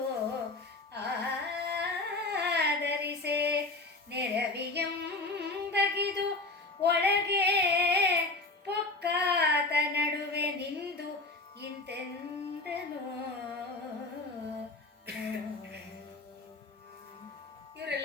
ಆದರಿಸೆ ನೆರವಿಯಂ ಬಗಿದು ಒಳಗೆ ಪೊಕ್ಕಾದ ನಡುವೆ ನಿಂದು ಇಂತೆಂದನು.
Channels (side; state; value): right; quieter; 3.2 dB